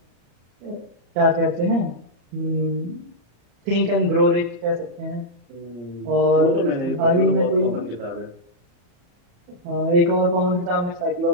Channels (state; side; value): late; left; 34 ms